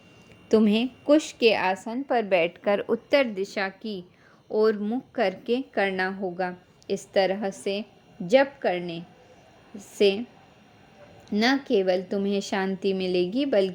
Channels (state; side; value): identical; both; correlation 1.00